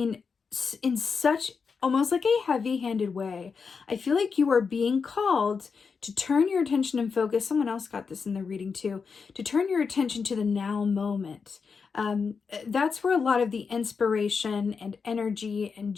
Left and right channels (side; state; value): right; quieter; 5.4 dB